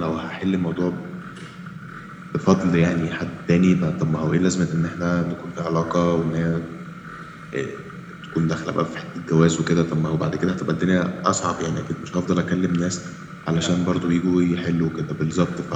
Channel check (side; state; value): both; identical; correlation 1.00